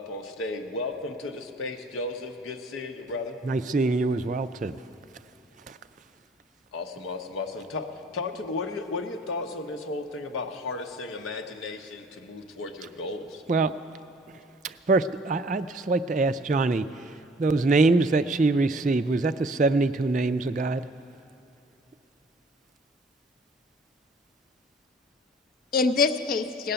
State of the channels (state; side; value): normal; both; correlation 0.53